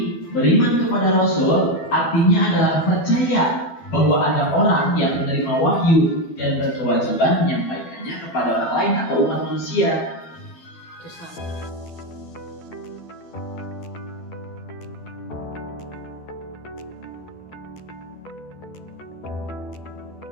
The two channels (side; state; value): right; late; 12 ms